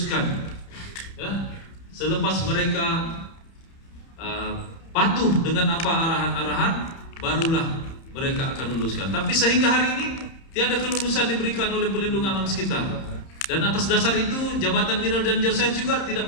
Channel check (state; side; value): late; right; 30 ms